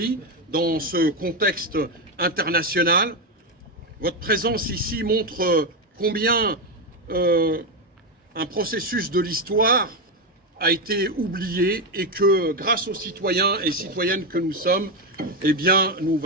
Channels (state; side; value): normal; both; correlation 0.09